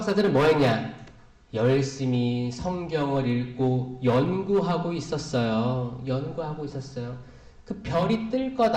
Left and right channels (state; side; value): identical; both; correlation 1.00